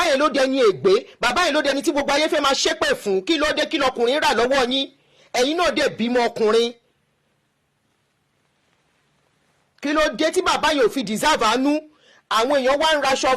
yẹn ló di ẹni ègbé, bàbá yẹn ló di ẹni tí gbogbo ayé fẹ́ máa ṣépè fún. kí ló dé kí lọkùnrin rà lọ́wọ́ yín? ẹ̀yin náà dẹ̀ bímọ ọkùnrin. kí ló dé tí bàbá yẹn ò fi deserve àánú? àwọn èèyàn wá ń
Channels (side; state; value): both; identical; correlation 1.00